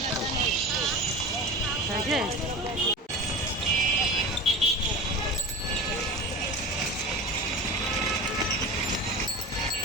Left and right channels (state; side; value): normal; both; correlation 0.31